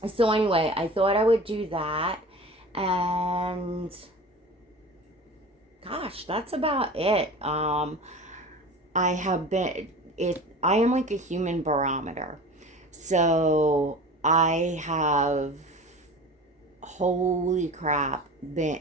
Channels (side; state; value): both; normal; correlation 0.37